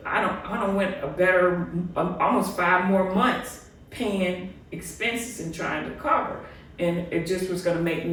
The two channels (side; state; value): both; identical; correlation 1.00